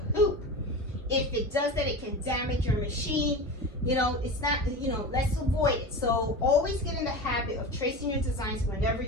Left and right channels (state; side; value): normal; both; correlation 0.28